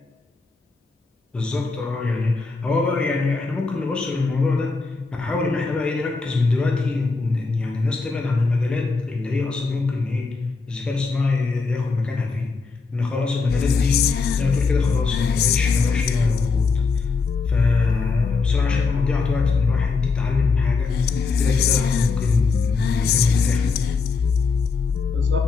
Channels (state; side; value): quieter; right; 4.5 dB